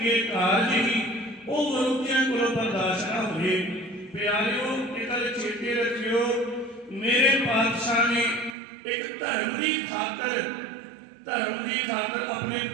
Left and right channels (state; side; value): drops out; left; at 8.6 s